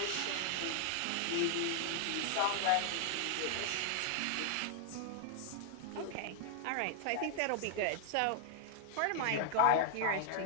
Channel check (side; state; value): both; different; correlation 0.00